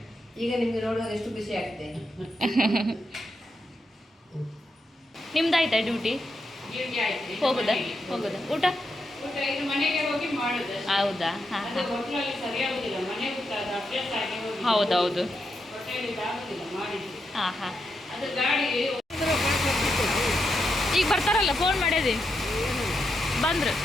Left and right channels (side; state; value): both; normal; correlation 0.84